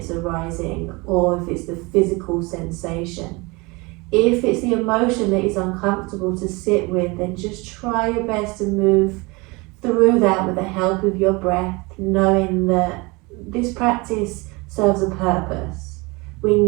arising or if it's the physical sensation. If it's the emotion that is uncomfortable to sit with, then just try your best to move through that with the help of your breath, knowing that this practice serves a purpose. We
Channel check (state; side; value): quieter; left; 25.7 dB